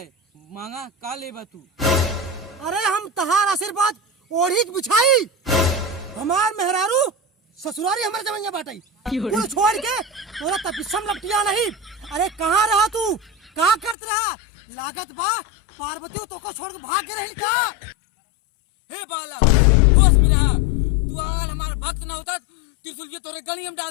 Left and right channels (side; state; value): right; drops out; at 14.0 s